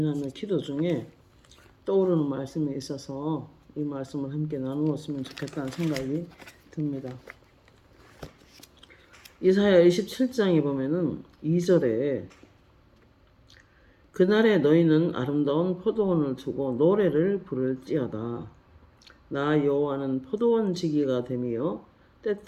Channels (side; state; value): both; identical; correlation 1.00